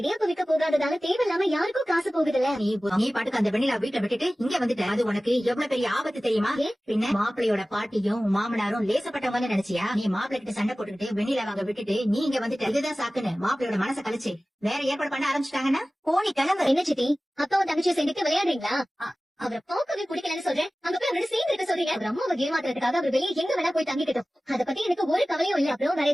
விற்க போகாததால தேவையில்லாம யாருக்கும் காசு போகுதுல்ல. நீ பாட்டுக்கு அந்த வெண்ணிலா வீட்டை விட்டுட்டு இங்க வந்துட்ட. அது உனக்கு எவ்வளவு பெரிய ஆபத்து தெரியுமா? பின்ன மாப்பிள்ளையோட பாட்டியும் மாமனாரும் லேசப்பட்டவங்க நினைச்சியா? நீ மாப்பிள்ளை கிட்ட சண்டை போட்டுக்கிட்டு வெண்ணிலா வாங்க விட்டுட்டு நீ இங்க வந்துட்ட. இதுதான் சாக்குன்னு மாப்பிள்ளையோட மனசை கழிச்சு வேற ஏற்பாடு பண்ண ஆரம்பிச்சுட்டாங்கன்னா போனி கிளம்பு. என்ன சித்தி, அப்பாவும் தங்கச்சியை சேர்ந்துட்டு விளையாடுறீங்களா? அவரை பார்க்கவே பிடிக்கலன்னு சொல்றேன். அங்க போய் அவரோட சேர்ந்து இருக்க சொல்றீங்க. அவர் அம்மாவை ஏமாத்துறதுக்காக அவர் வெளியே எங்க வேணா போய் தங்கிக்கிட்டோம். அதை பத்தி எனக்கு ஒரு கவலையும் இல்ல. அப்புறம் வேற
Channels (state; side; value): normal; both; correlation 0.97